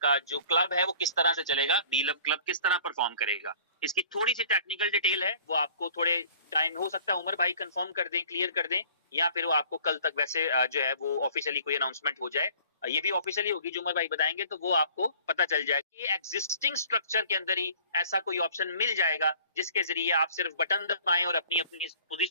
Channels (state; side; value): inverted; both; correlation -0.51